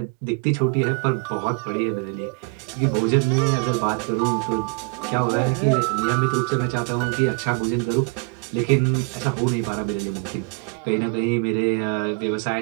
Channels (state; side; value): quieter; left; 33.6 dB